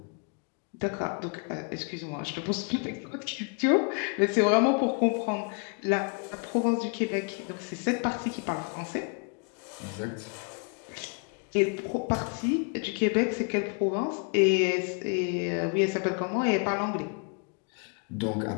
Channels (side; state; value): right; quieter; 38.2 dB